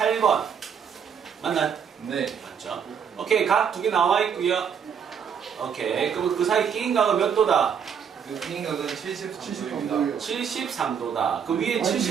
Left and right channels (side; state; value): left; quieter; 7.4 dB